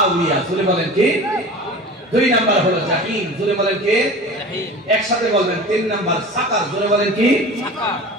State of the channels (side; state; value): both; normal; correlation 0.36